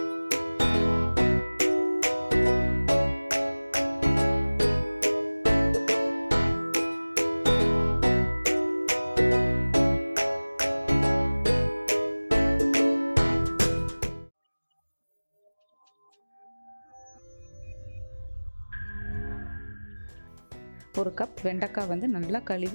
ஒரு கப் வெண்டைக்காய் வந்து நல்லா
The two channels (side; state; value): both; inverted; correlation -1.00